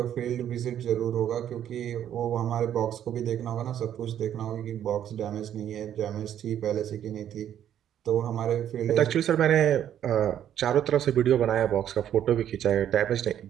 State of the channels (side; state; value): left; quieter; 10.4 dB